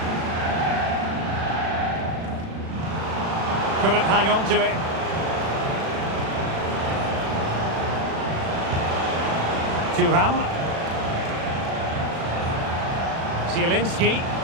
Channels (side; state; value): left; late; 36 ms